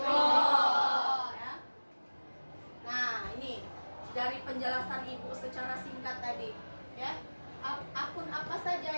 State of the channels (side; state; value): both; inverted; correlation -1.00